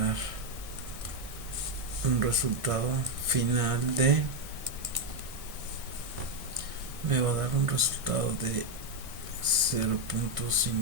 un resultado final de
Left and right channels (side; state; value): left; late; 1.6 ms